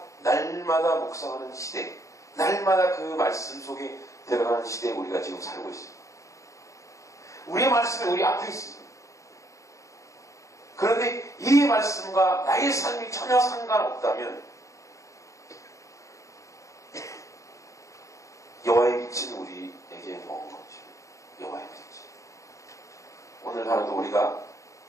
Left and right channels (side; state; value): right; late; 0.15 ms